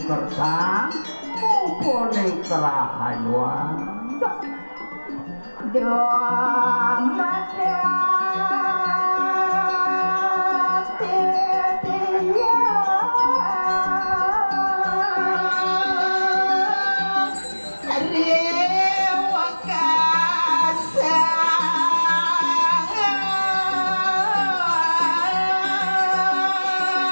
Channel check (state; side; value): inverted; both; correlation -1.00